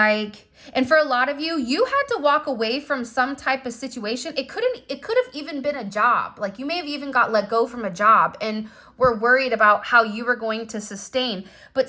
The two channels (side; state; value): both; identical; correlation 1.00